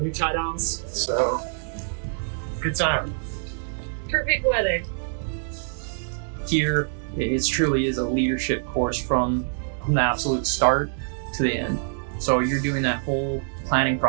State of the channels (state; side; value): silent; left; digital silence